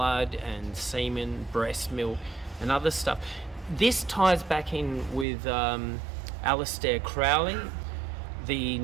and semen, breast milk, and other stuff. This ties back in with Aleister Crowley, the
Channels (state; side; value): drops out; left; at 5.2 s